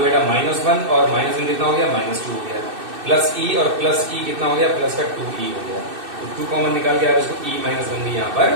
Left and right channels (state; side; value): late; left; 2.6 ms